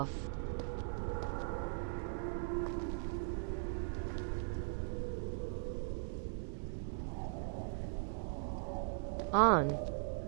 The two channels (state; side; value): silent; left; digital silence